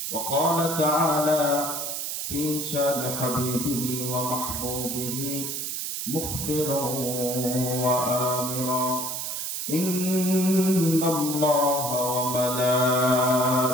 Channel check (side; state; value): right; noise; hiss, 4 dB below the sound